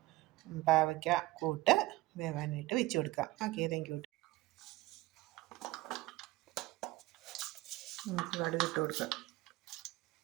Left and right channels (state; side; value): quieter; left; 19.1 dB